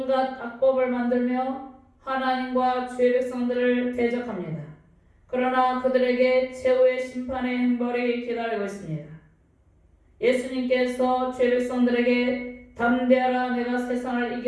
악법을 만들며 하나님과 주의 백성들을 대적합니다. 그러나 그들에게 최후의 심판의 형벌이 기다리고 있습니다. 예수님께서 주의 백성들에게 담대하라 내가 세상을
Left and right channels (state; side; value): identical; both; correlation 1.00